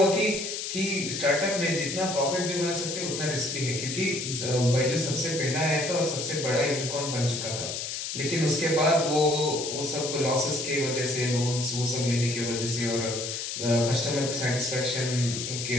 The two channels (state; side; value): noise; left; hiss, 4 dB below the sound